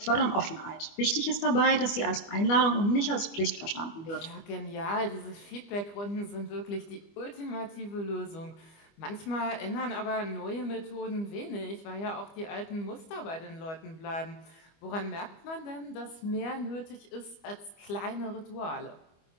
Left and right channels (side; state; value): right; late; 25 ms